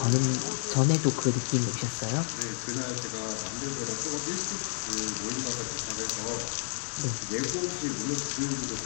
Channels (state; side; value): silent; right; 58 dB below the other